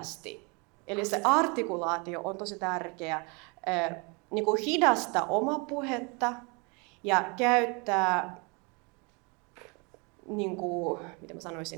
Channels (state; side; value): quieter; left; 31.0 dB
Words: Eli se artikulaatio on tosi tärkeä. Niin kuin hidasta oma puhetta ja käyttää, niin kuin, mitä mä